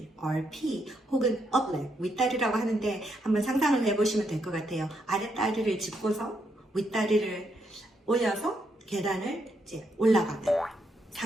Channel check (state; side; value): normal; both; correlation 0.78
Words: RP, 혹은 upleg, 윗다리라고 하는데 한번 상상을 해보시면 될 것 같아요. 아랫다리를 짚고서 윗다리를 올려서 계단을 이제 올라가는